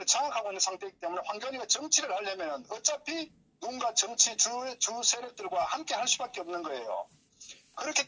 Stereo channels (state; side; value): identical; both; correlation 1.00